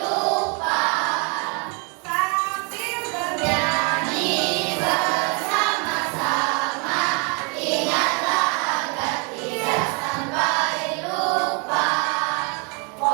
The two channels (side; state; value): left; quieter; 34.0 dB